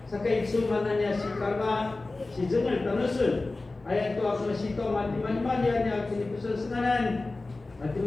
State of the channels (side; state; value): right; quieter; 3.3 dB